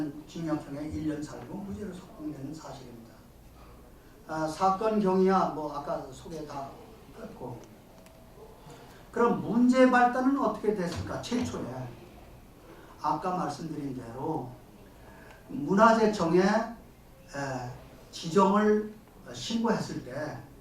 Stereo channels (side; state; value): both; identical; correlation 1.00